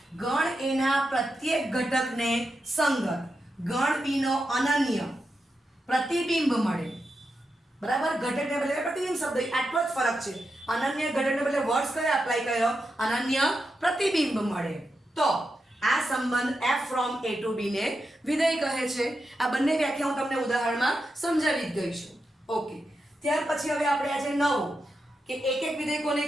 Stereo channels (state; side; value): normal; both; correlation 0.88